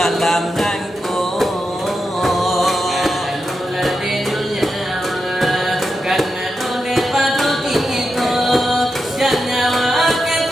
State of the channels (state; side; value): normal; both; correlation 0.87